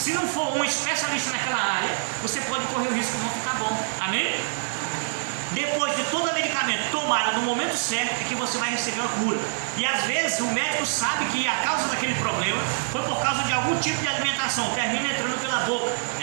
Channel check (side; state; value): left; silent; digital silence